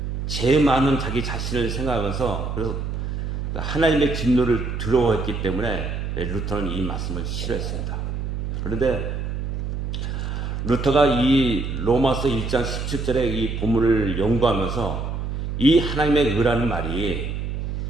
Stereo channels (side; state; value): right; noise; hum, 3 dB below the sound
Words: 죄 많은 자기 자신을 생각하면서 그래서 하나님의 진노를 두려워했기 때문에 루터는 이 말씀을 싫어했습니다. 그런데 루터가 이 로마서 1장 17절의 이 본문을 연구하면서 이 하나님의 의라는 말이